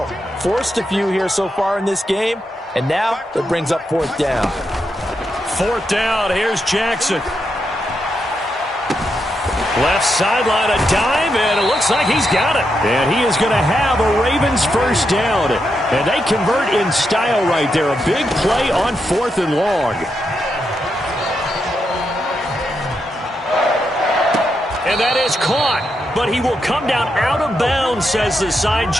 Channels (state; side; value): normal; both; correlation 0.83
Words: Forced a few here so far in this game, and now it brings up fourth down. Fourth down, here's Jackson. Left sideline, a dive, and it looks like he's got it. And he is going to have a Ravens first down. And they convert in style right there. A big play on fourth and long. And that is caught. But he will come down out of bounds, says the side